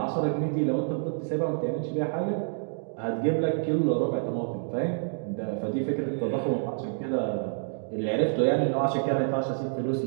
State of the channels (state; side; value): silent; left; digital silence